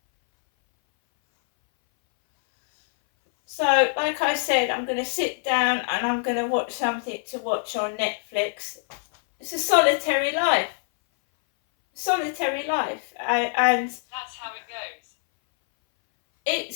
So, like I said, I'm going to sit down and I'm going to watch something to watch on Netflix. It's a solitary life. Solitary life. And that's how it goes.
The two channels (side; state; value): right; silent; 60 dB below the other